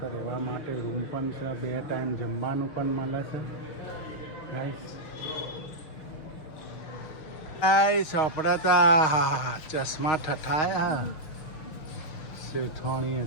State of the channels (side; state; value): right; late; 6.5 ms